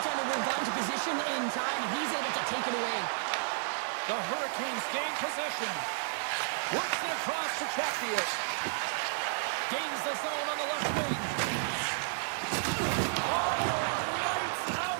would have gotten to position in time, and he's able to take it away. The Hurricanes gain possession. Works it across to Chatfield. Gains the zone on the left wing. Oh, lights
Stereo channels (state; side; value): silent; left; 56 dB below the other